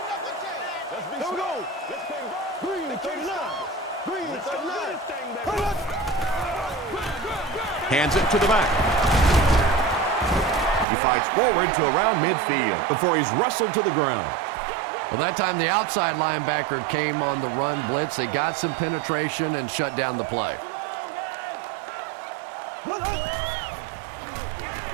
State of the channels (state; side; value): drops out; left; at 10.9 s